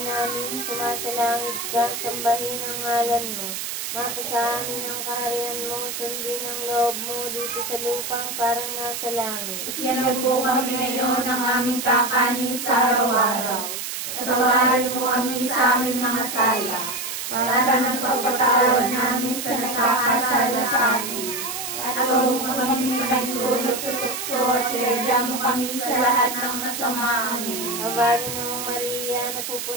sumasalangit ka, sambahin ang ngalan mo. Mapasa amin ang kaharian mo, sundin ang loob mo dito sa lupang parang nasa langit. Bigyan po kami ngayon ng aming kakanin sa araw-araw. Patawarin mo kami sa aming mga sala, para nagpapatawad namin sa nagkakasala sa amin. At huwag mo kami pinagtulot sa tukso at iadya mo kami sa lahat ng masama. Amen. Abagin ng Maria,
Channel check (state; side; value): noise; right; hiss, 5 dB below the sound